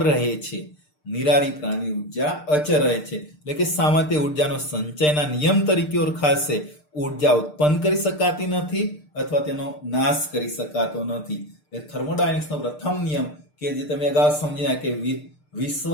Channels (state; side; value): late; right; 6.7 ms